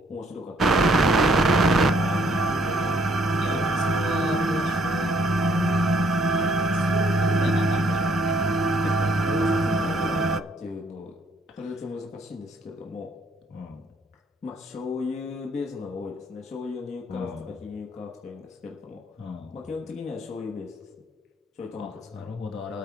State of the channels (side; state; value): both; normal; correlation 0.66